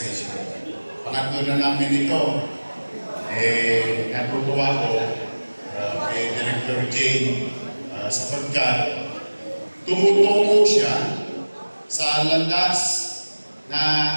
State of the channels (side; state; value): both; inverted; correlation -1.00